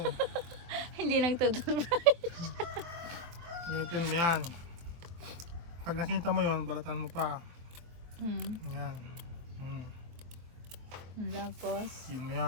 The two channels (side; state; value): left; late; 23 ms